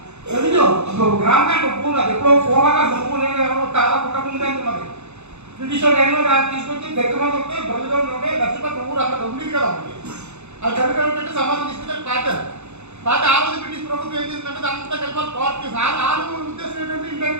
రెవెన్యూ గ్రామ కంటే భూములు అది ఎప్పుడో పూర్వంగా భూములు ఎవరో చాలా కుట్టకుండా ఉన్నది. బ్రిటిష్ వాళ్ళు తీసుకొచ్చి దగ్గర మంది ఉంటే బరువులో ఉంటే లక్షపతి ఊరు అక్కడ ఉండేది కదా. అది కనుక సమాజం తీసుకుంటే పాత ఆ రోజు బ్రిటిష్ ప్రభుత్వం ఏం చేసిందంటే అంతా కలిపి కోర్టు ఆరు ఉద్దేశం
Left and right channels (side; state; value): left; late; 0.81 ms